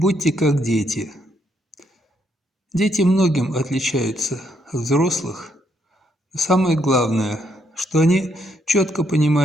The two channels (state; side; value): normal; both; correlation 0.74